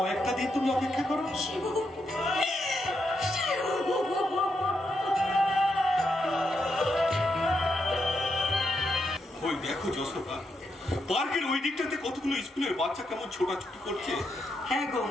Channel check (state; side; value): normal; both; correlation 0.82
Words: দিন তুমি অপেক্ষা করো। শিবু ওই দেখো যশোদা, পার্কের ওই দিকটাতে কতগুলো স্কুলের বাচ্চা কেমন ছোটাছুটি করছে। হ্যাঁ গো,